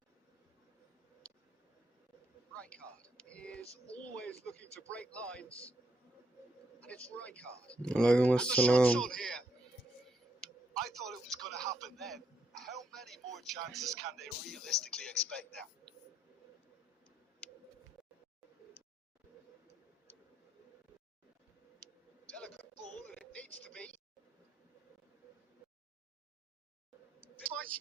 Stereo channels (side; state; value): both; normal; correlation 0.76